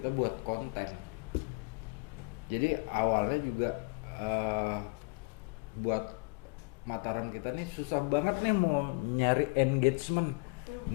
buat konten. Jadi awalnya juga buat Mataram kita nih susah banget nih mau nyari engagement,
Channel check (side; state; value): right; quieter; 29.9 dB